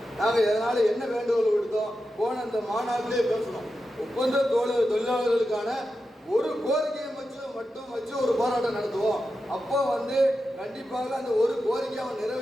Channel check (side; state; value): both; normal; correlation 0.90